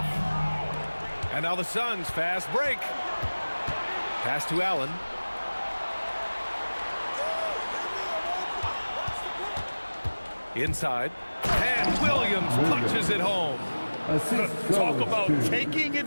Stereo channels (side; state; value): both; inverted; correlation -1.00